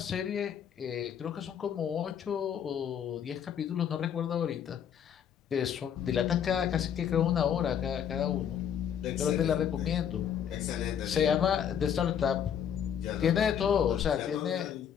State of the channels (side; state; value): right; quieter; 8.6 dB